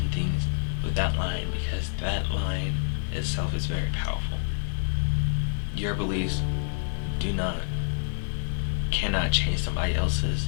things, with that line, because that line itself is very powerful. Your beliefs cannot change somebody else's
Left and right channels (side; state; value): right; silent; digital silence